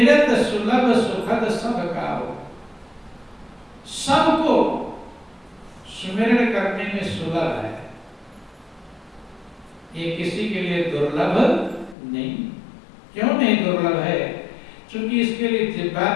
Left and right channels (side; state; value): right; drops out; at 12.0 s